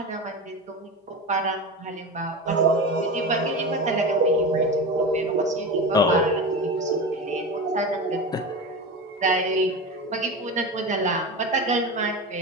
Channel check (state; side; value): normal; both; correlation 0.25